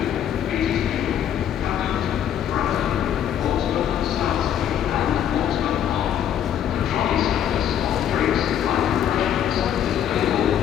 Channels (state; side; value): quieter; right; 9.9 dB